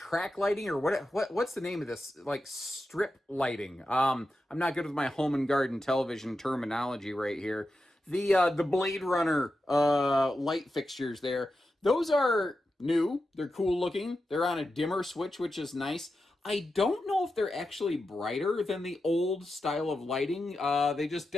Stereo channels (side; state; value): both; normal; correlation 0.90